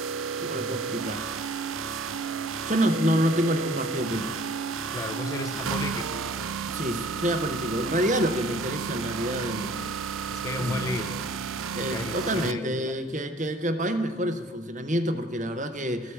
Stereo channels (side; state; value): both; normal; correlation 0.53